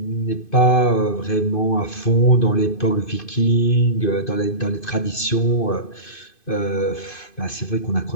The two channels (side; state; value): right; late; 2.5 ms